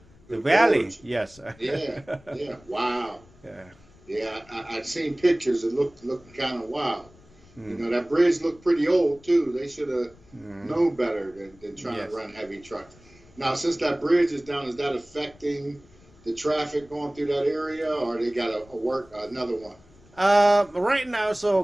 valley. Gorge. Yes. Yeah. Wow. Yeah. I've seen pictures. It looked kind of wild. You know, that bridge looked pretty old too. They should have known better than trying to run heavy trucks. Now, since that bridge is down, is that affecting the traffic going through that area, or they got to work another one? Right now,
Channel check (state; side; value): noise; left; rumble, 26 dB below the sound